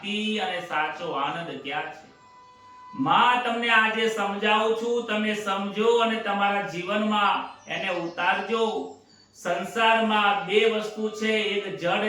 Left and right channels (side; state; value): both; identical; correlation 1.00